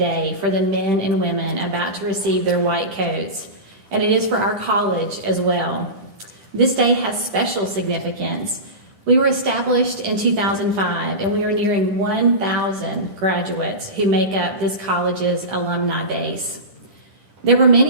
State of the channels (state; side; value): late; left; 10 ms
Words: for the men and women about to receive their white coats, and it is for our college as well. This day has special significance. We were established in 2005, and we are nearing 1,000 graduates who make up this college's alumni base. There were